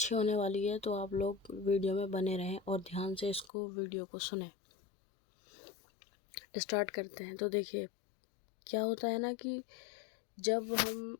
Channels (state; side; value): drops out; right; at 3.5 s